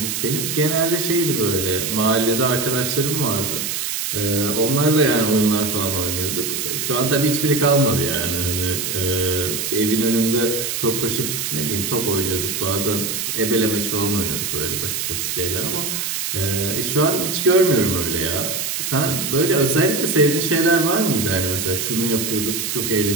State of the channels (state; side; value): noise; right; hiss, 2 dB below the sound